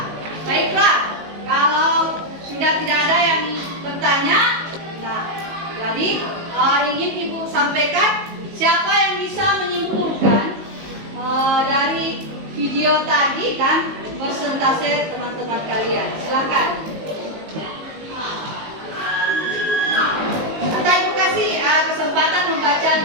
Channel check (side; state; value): left; late; 19 ms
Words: baiklah. Kalau sudah tidak ada yang bertanya, nah, jadi ingin Ibu sampaikan siapa yang bisa menyimpulkan dari video tadi dan persentase teman-teman kalian. Silakan. kesempatan membaca